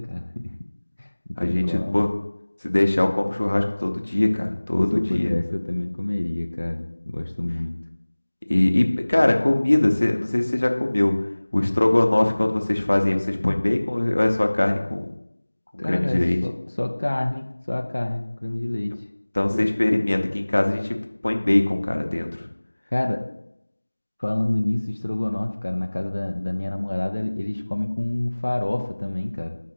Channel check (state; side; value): inverted; both; correlation -1.00